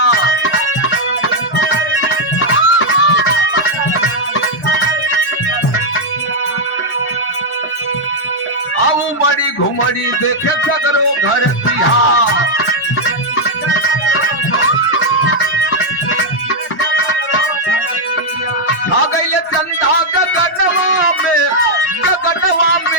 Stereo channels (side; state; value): both; normal; correlation -0.01